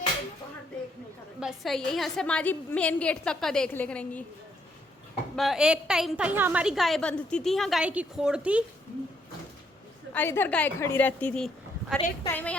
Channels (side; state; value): both; normal; correlation 0.72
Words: बस सही है, यहाँ से माँ जी मेन गेट तक का देख ले करेंगी। एक टाइम था यहाँ हमारी गाय बंधती थी, यहाँ गाय की खोड़ थी और इधर गाय खड़ी रहती थी, और एक टाइम है